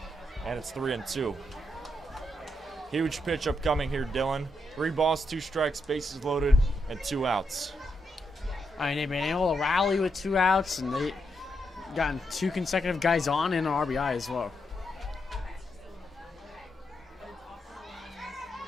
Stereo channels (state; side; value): normal; both; correlation 0.81